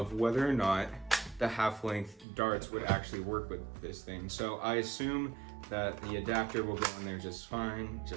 whether or not the half-length darts would actually work with this thing. So I assume that the adapter will go in there just fine,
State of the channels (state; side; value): drops out; left; at 2.2 s